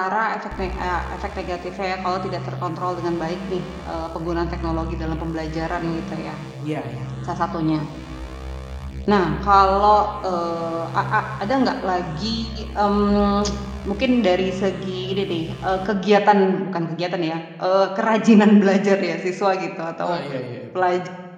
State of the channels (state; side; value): identical; both; correlation 1.00